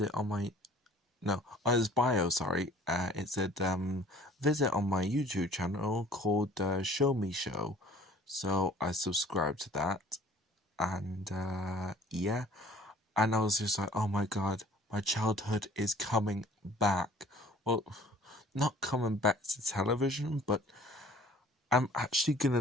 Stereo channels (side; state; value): both; normal; correlation 0.51